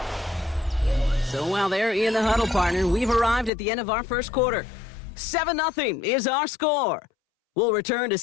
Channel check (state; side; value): drops out; right; at 3.5 s